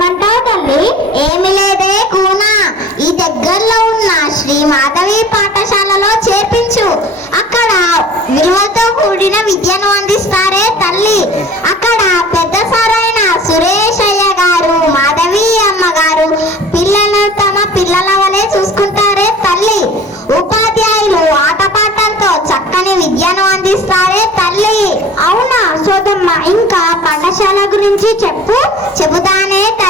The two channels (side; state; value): both; normal; correlation 0.44